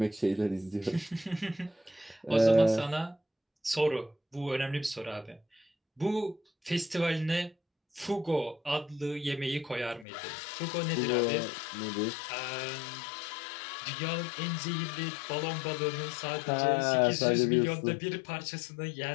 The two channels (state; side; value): drops out; right; at 10.1 s